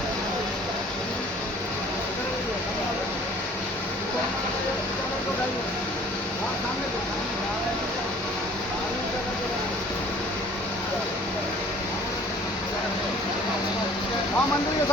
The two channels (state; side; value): normal; both; correlation 0.52